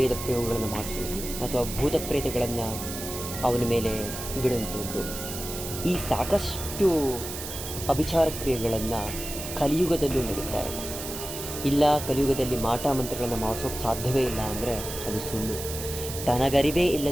ಪ್ರಯೋಗಗಳನ್ನು ಮಾಡಿಸುವುದು, ಅಥವಾ ಭೂತ ಪ್ರೇತಗಳನ್ನು ಅವನ ಮೇಲೆ ಬಿಡುವಂಥದ್ದು. ಈ ಸಾಕಷ್ಟು ಅಭಿಚಾರ ಕ್ರಿಯೆಗಳನ್ನು ಕಲಿಯುಗದಲ್ಲೂ ನಡೀತಾ ಇದೆ. ಇಲ್ಲ, ಕಲಿಯುಗದಲ್ಲಿ ಮಾಟ ಮಂತ್ರಗಳನ್ನು ಮಾಡಿಸೋಕೆ ಸಾಧ್ಯವೇ ಇಲ್ಲ ಅಂದರೆ ಅದು ಸುಳ್ಳು. ತನಗರಿವೇ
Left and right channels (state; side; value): noise; right; hiss, 8 dB below the sound